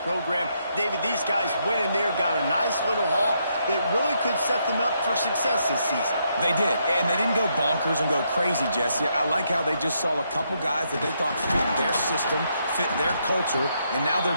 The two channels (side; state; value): both; inverted; correlation -0.77